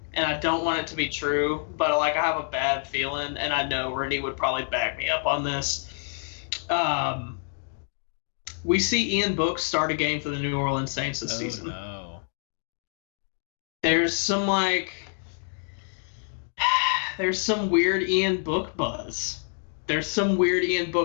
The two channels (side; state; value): right; silent; 57 dB below the other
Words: and I don't want it to be true, but I have a bad feeling, and I know Rennie would probably back me up on this. We see Ian Book start a game for the New Orleans Saints this season. No. There's some weird Ian Book buzz. There's some weird Ian